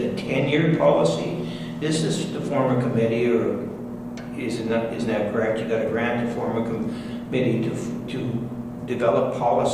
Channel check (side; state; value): both; identical; correlation 1.00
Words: 10-year policy? This is to form a committee, or isn't that correct? You got a grant to form a committee to develop